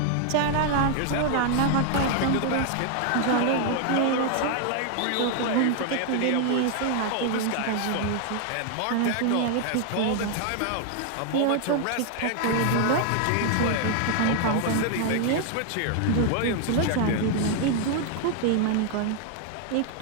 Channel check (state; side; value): different; both; correlation 0.00